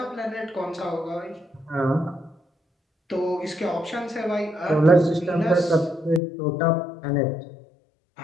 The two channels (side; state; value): right; drops out; at 6.2 s